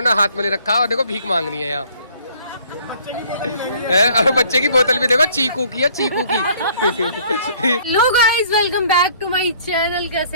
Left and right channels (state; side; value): inverted; both; correlation -0.58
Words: हाथ में ले रखा, और देखो भीख मांगनी है यहाँ और बच्चे की बोतल भी देखो चीकू की है, चीकू की। Hello guys, welcome back to my channel.